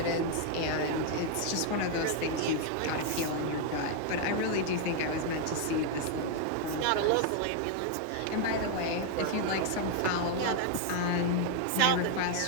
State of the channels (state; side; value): different; both; correlation 0.00